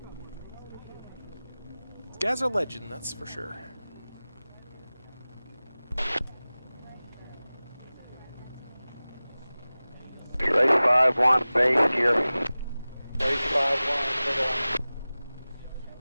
legend, that's for sure. Race 5-1, base gear. Race 5-1, circle line.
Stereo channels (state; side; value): inverted; both; correlation -0.98